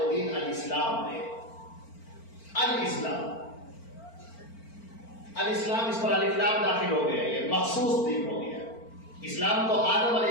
دین الاسلام ہے. الاسلام، الاسلام، اس پر الف لام داخل ہو گیا، یہ مخصوص دین ہو گیا. اسلام تو آدم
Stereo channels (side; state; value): right; late; 4.4 ms